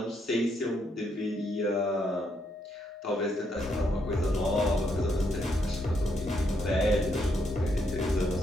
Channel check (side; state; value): both; normal; correlation 0.76